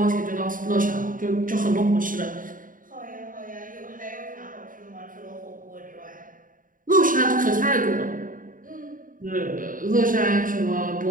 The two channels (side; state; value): left; late; 0.39 ms